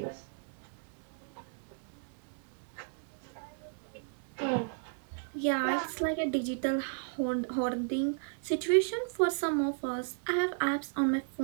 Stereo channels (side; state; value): left; silent; digital silence